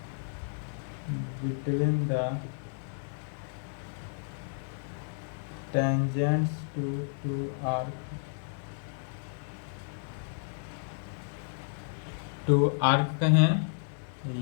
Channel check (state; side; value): silent; right; digital silence